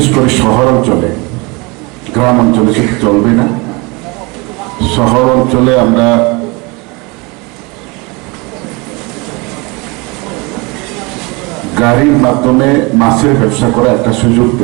করে শহর অঞ্চলে, গ্রাম অঞ্চলে সেটা চলবে না। শহর অঞ্চলে আমরা গাড়ির মাধ্যমে মাছের ব্যবসা করা একটা সুযোগ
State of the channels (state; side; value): quieter; left; 27.0 dB